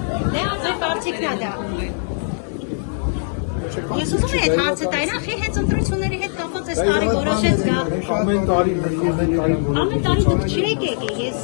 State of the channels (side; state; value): right; silent; 64 dB below the other